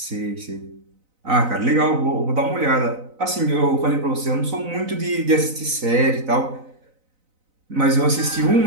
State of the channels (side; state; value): left; late; 4.0 ms